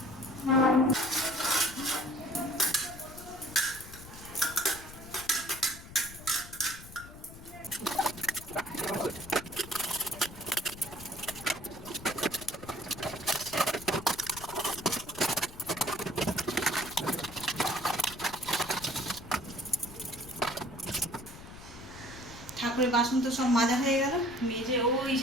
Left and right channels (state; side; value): noise; left; rumble, 16 dB below the sound